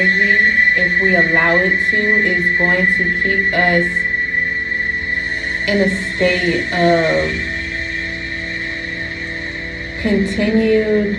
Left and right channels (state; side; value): identical; both; correlation 1.00